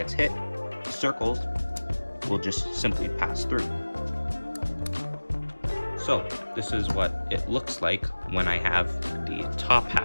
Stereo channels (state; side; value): inverted; both; correlation -1.00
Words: hit, the circles will just simply pass through. So this is what it looks like when I have the top